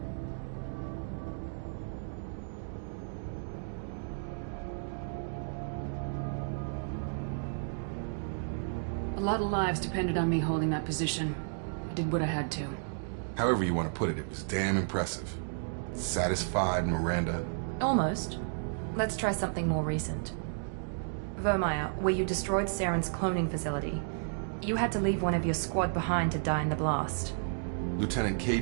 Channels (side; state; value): left; silent; digital silence